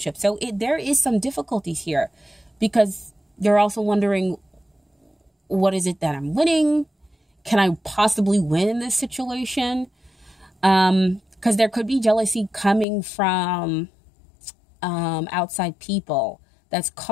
So there is some difficulties here because you're also wondering, what is it that I'm winning? Can I possibly win in this situation? Because there could be jealousy coming from outside people that's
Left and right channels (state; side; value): drops out; right; at 12.9 s